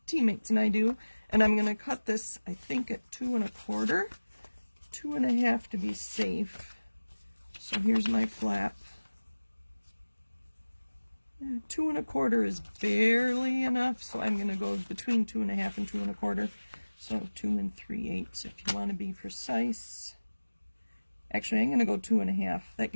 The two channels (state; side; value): inverted; both; correlation -1.00